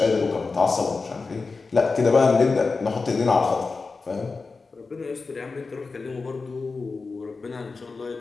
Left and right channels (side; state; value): right; quieter; 4.2 dB